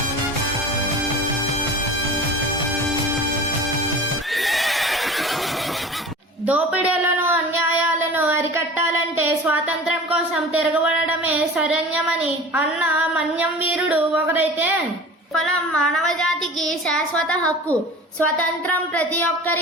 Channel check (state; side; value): normal; both; correlation 0.38